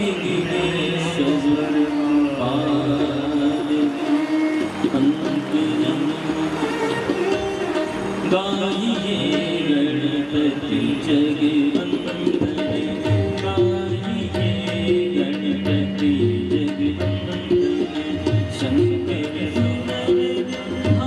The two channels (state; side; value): identical; both; correlation 1.00